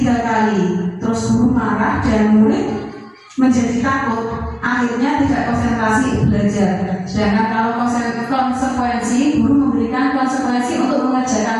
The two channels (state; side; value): identical; both; correlation 1.00